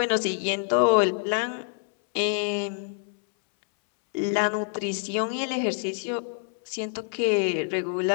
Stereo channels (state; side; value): silent; right; 61 dB below the other